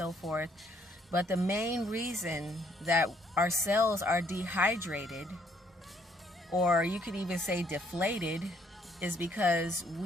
forth. But the main reason that our cells are dehydrated, or you could even say deflated, is because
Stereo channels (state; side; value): normal; both; correlation 0.67